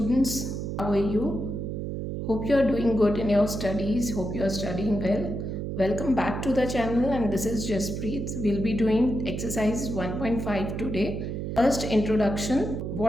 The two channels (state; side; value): noise; right; hum, 4 dB below the sound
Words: How are you? Hope you are doing good in your studies. Hope you are studying well. Welcome back to the channel, and this is Jaspreet. We'll be doing exercise 1.5 today. First, introduction.